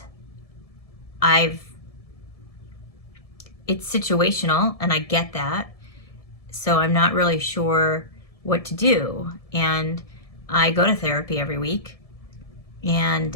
it's situational, and I get that. So I'm not really sure what to do. And I go to therapy every week,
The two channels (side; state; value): right; late; 1.7 ms